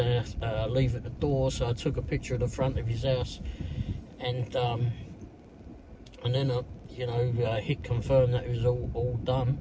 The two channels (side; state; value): both; identical; correlation 1.00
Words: leave at the door, so I took a picture of the front of his house, and then I, hit confirm that it was all done,